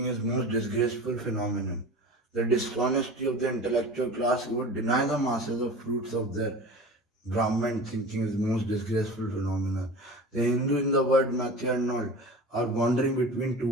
is most disgraceful phenomenon. the dishonesty of the intellectual class who would deny the masses of fruits of their Brahman thinking is the most disgraceful phenomenon. The Hindu in the word Matthew and all are wandering between two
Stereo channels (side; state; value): both; normal; correlation 0.35